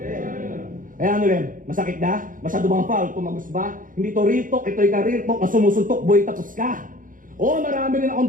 Kaya rin, masakit na? Masyado bang foul? Tumagos ba? Hindi to real talk, ito'y career talk na sumusuntok, boy, tapos ka. Oo, marami rin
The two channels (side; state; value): left; late; 0.39 ms